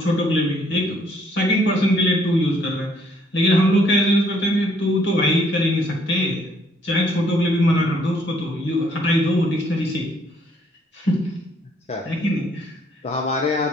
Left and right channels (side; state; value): both; normal; correlation 0.66